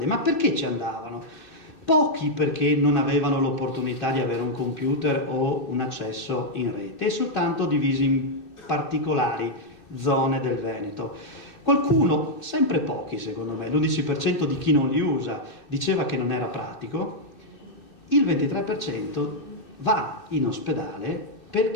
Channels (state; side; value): late; right; 2.6 ms